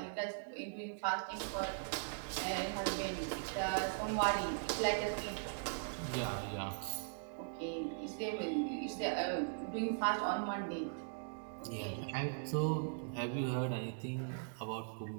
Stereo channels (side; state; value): left; silent; digital silence